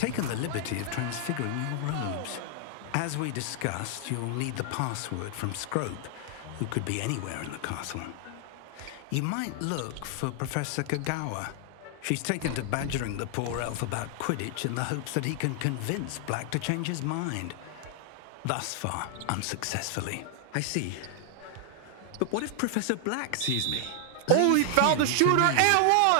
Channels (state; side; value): different; both; correlation 0.00